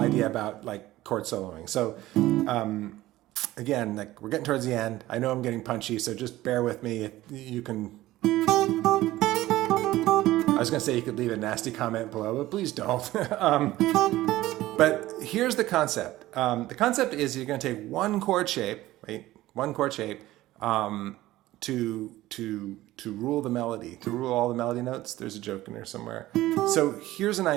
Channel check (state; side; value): quieter; left; 16.3 dB